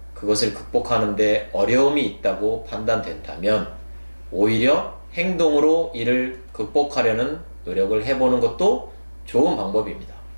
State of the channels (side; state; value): both; inverted; correlation -1.00